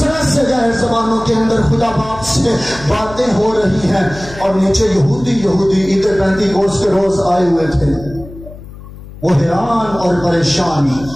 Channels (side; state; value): left; noise; hum, 16 dB below the sound